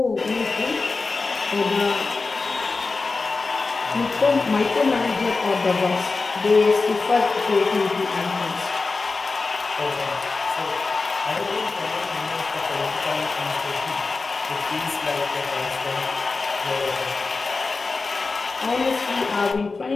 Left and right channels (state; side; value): quieter; right; 4.0 dB